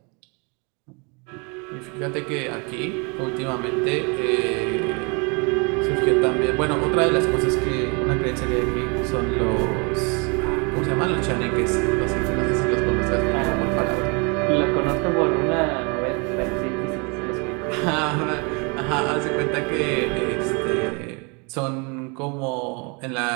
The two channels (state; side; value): quieter; left; 32.3 dB